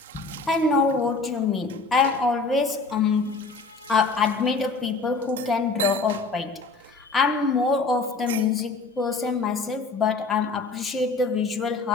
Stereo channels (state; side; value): quieter; right; 3.9 dB